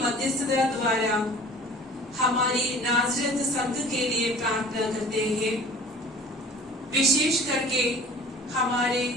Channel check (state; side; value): normal; both; correlation 0.46